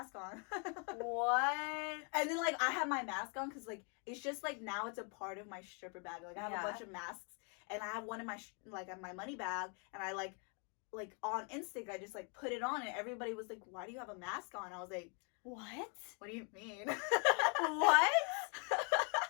on. What? And then, like, I had my mask on because, like, it's just, like, now it's a part of my stripper bag. Like, I have a bunch of masks, and I have one in my, my money bag, and I, like, on instinct, I just, like, put it on, and everybody was like, why do you have a mask on? I was like, what? What do you mean? What?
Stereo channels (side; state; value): right; quieter; 37.8 dB